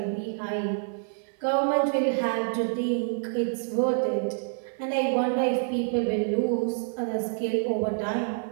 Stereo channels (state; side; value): silent; left; 57 dB below the other